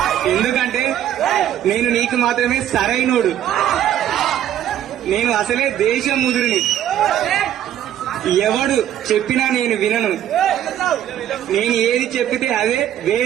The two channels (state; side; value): quieter; left; 11.1 dB